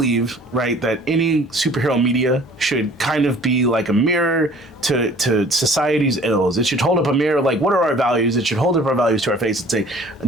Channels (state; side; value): normal; both; correlation 0.51